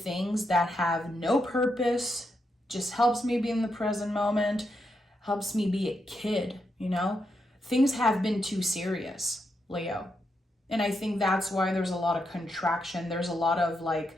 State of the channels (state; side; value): normal; both; correlation 0.83